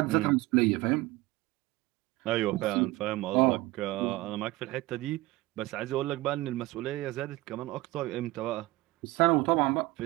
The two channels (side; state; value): left; quieter; 19.7 dB